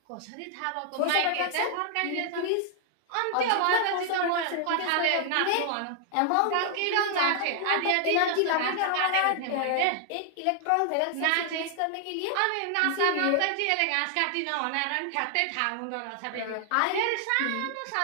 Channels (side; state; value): both; different; correlation 0.00